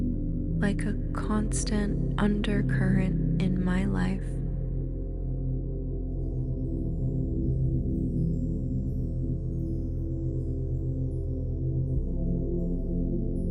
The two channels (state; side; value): identical; both; correlation 1.00